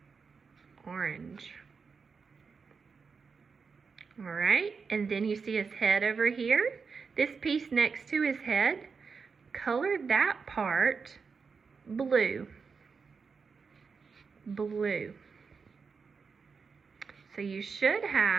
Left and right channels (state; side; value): quieter; left; 5.3 dB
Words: Orange. Alright, and then you see his head over here. This piece next to his head, color that part blue. Blue. So you should